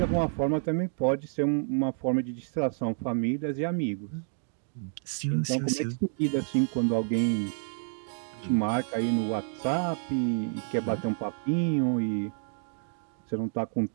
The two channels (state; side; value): silent; left; digital silence